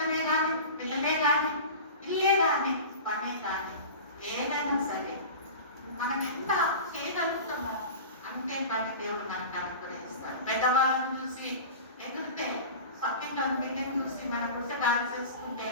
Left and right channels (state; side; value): inverted; both; correlation -0.33